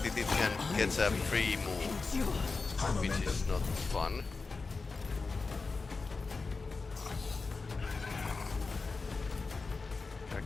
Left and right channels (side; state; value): right; quieter; 4.2 dB